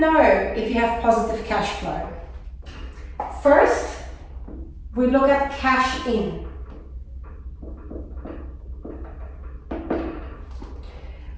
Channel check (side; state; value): both; identical; correlation 1.00